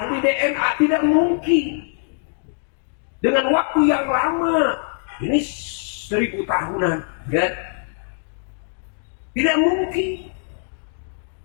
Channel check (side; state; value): right; silent; digital silence